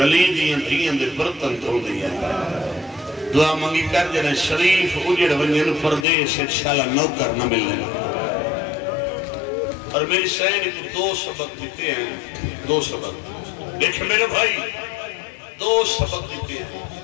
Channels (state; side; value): drops out; right; at 6.1 s